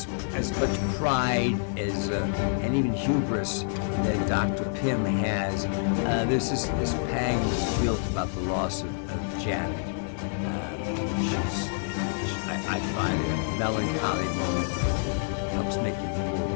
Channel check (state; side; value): silent; right; digital silence